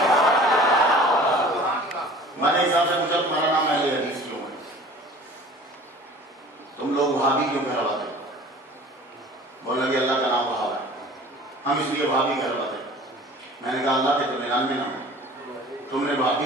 मेरे हिसाब से पूछा तुम्हारा नाम अहले हदीस क्यों है? तुम लोग वहाबी क्यों कहलाते? बोला कि अल्लाह का नाम वहाब है, हम इसलिए वहाबी कहलाते। मैंने कहा अल्लाह के तो 99 नाम, तुमने वहाबी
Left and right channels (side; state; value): both; normal; correlation 0.45